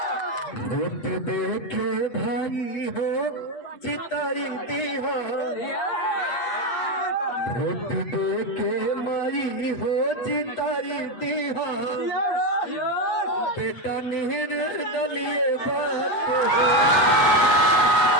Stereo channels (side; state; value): right; late; 8.3 ms